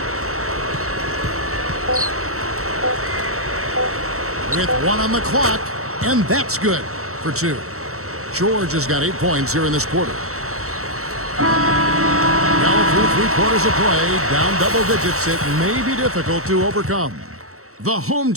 With 1 on the clock, and that's good for 2. George has got 8 points here in this quarter. Now through 3 quarters of play, down double digits, it may be difficult to overcome. The home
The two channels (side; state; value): left; late; 0.64 ms